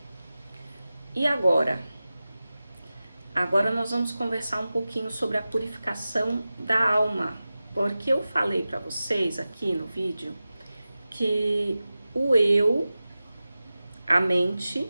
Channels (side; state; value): both; inverted; correlation -0.95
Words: E agora? Agora nós vamos conversar um pouquinho sobre a purificação da alma, porque eu falei para vocês aqui no vídeo que o eu, a mente,